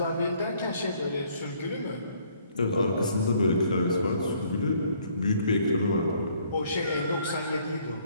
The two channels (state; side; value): inverted; both; correlation -0.63